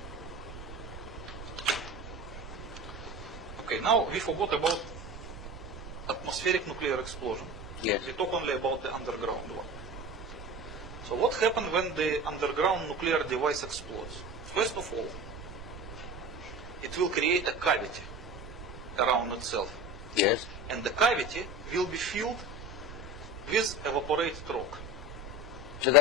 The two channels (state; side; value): noise; right; rumble, 12 dB below the sound